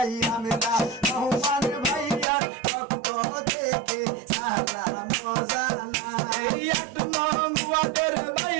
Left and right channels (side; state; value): left; drops out; at 2.2 s